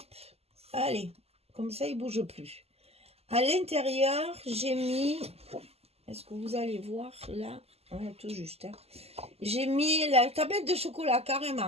allez, comme ça il bouge plus. À l'intérieur, j'ai mis, est-ce que vous allez voir là, ouais, tout juste, hein. J'ai mis la tablette de chocolat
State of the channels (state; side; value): late; left; 0.29 ms